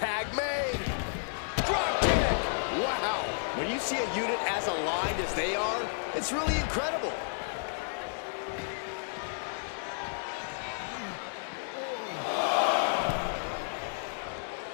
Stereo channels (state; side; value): silent; right; digital silence